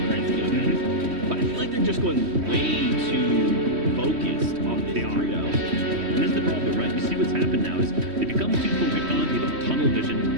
the grand scheme of things. But I feel like they're just going way too focused on this trio. And that's the problem, right? You see what's happened now is they become too focused on it, they've got tunnel vision.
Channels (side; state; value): left; late; 3.1 ms